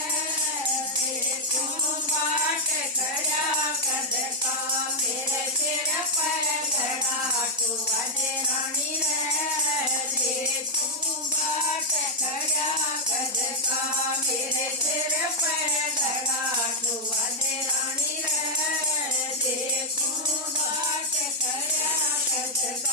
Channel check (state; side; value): normal; both; correlation -0.03